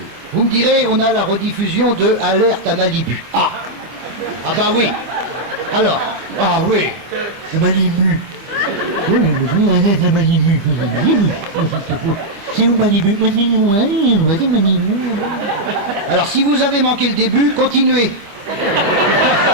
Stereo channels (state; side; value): late; left; 25 ms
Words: Vous me direz, on a la rediffusion de Alerte à Malibu. Ah bah oui. Alors, ah oui. Malibu. Oui, Alerte à Malibu. C'est où Malibu? C'est Malibu. Alors, si vous avez manqué le début, continuez.